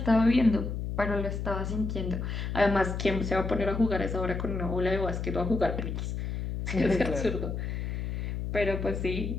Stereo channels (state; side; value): noise; left; hum, 3 dB below the sound